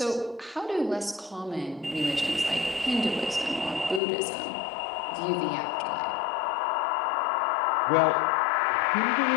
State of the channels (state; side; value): drops out; right; at 4.0 s